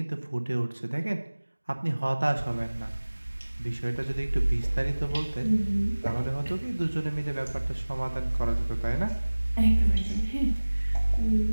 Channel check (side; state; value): both; inverted; correlation -1.00